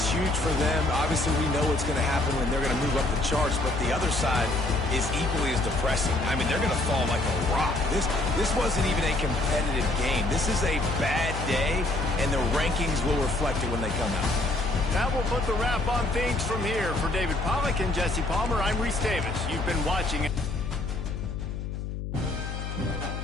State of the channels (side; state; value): left; noise; hum, 5 dB below the sound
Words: huge for them. Obviously, we know what's going to happen when they're going to move up the charts, but the other side is equally as depressing. I mean, they're going to fall like a rock. This wasn't even a competitive game. This is a bad day, and the rankings will reflect it when they come out. That will put the wrap on things from here. For David Pollack and Jesse Palmer, I'm Reese Davis. You've been watching